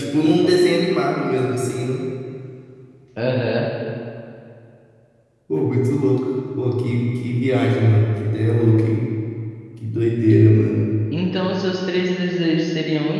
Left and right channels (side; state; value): both; identical; correlation 1.00